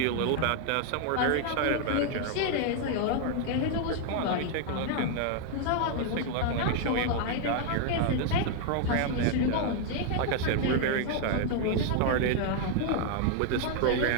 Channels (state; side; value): different; both; correlation 0.00